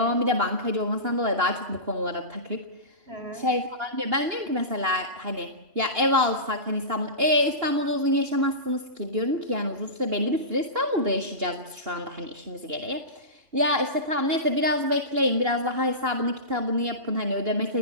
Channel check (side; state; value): left; late; 2.8 ms